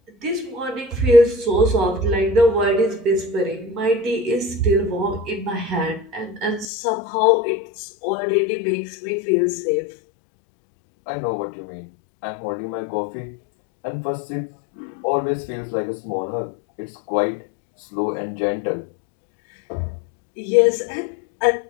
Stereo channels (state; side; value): drops out; right; at 6.7 s